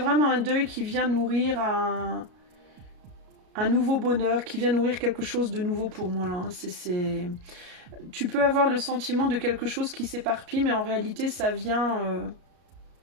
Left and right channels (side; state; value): left; late; 34 ms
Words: un deuil qui vient nourrir un nouveau bonheur, qui vient nourrir quelque chose de nouveau pour moi, là. Tu peux avoir le sentiment de quelque chose qui s'éparpille, mais en réalité, ça vient